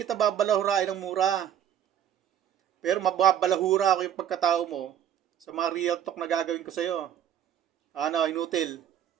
babalahurain ng mura. Pero mababalahura ako yung pagkatao mo sa mga real talk na gagawin ko sa'yo. Ano, inutil.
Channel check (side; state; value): left; quieter; 10.1 dB